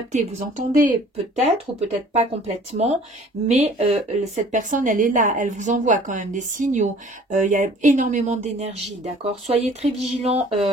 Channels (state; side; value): normal; both; correlation 0.52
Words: vous entendez peut-être ou peut-être pas complètement, mais cette personne, elle est là, elle vous envoie quand même des signaux. Il y a énormément d'énergie, d'accord? Soyez très vigilants,